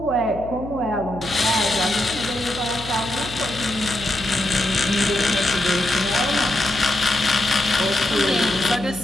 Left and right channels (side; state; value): left; noise; hum, 13 dB below the sound